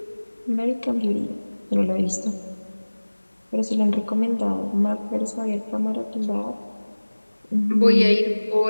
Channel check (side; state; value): both; inverted; correlation -1.00